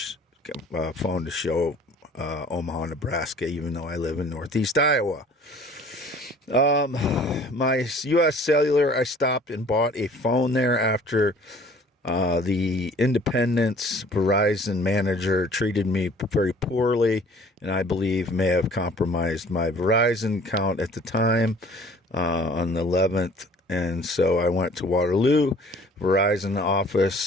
phone to show Omaha, Nebraska, even though I live in Northeast Iowa. My US Cellular, I stopped and bought a phone there after the Independence Verizon manager treated me very poorly, and I believe may have compromised my Verizon account at the time on the 11th. And so I went to Waterloo Verizon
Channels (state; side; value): normal; both; correlation 0.51